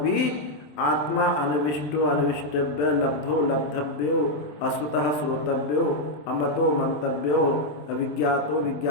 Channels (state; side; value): late; right; 27 ms